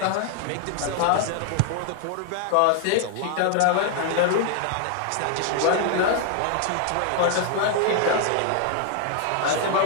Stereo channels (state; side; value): different; both; correlation 0.00